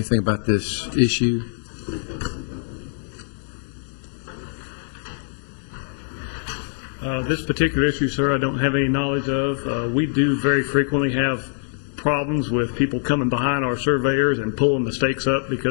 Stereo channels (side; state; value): right; silent; digital silence